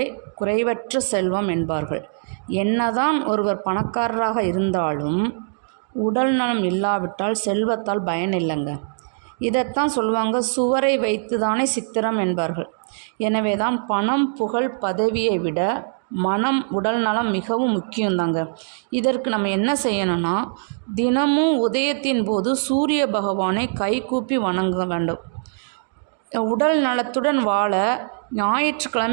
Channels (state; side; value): silent; left; digital silence